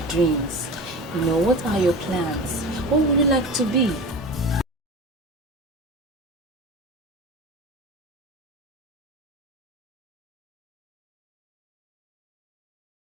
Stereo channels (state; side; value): normal; both; correlation 0.31